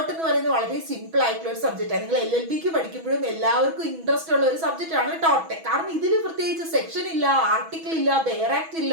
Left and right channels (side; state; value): left; late; 6.1 ms